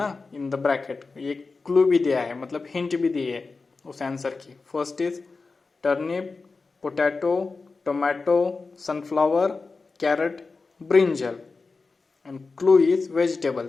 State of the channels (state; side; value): quieter; right; 4.1 dB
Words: in the bracket. ये clue भी दिया है, मतलब hint भी दी है उस आंसर की. First is turnip, potato, tomato, sunflower, carrot, brinjal. And clue is